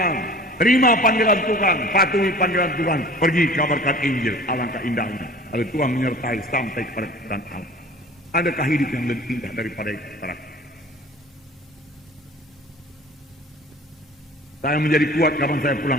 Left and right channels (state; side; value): normal; both; correlation 0.43